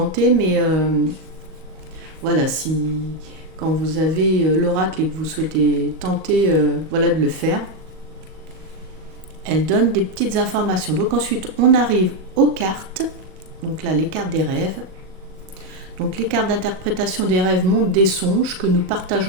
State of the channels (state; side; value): late; left; 38 ms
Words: mais voilà, quand vous avez l'oracle et que vous souhaitez tenter de le faire, elle donne des petites informations. Donc ensuite, on arrive aux cartes. Donc là, les cartes des rêves. Donc les cartes d'interprétation des rêves montrent des songes que nous